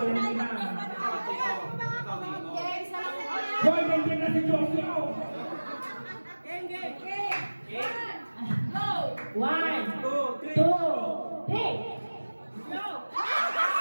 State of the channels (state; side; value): inverted; both; correlation -1.00